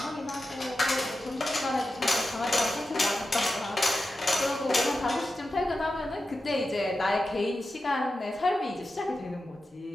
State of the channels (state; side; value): normal; both; correlation 0.91